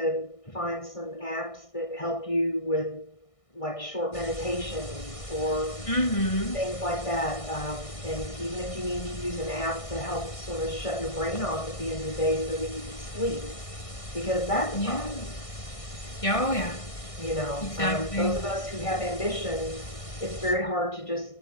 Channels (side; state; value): right; late; 1.6 ms